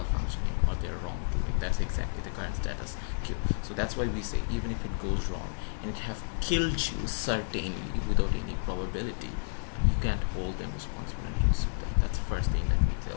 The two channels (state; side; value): silent; right; digital silence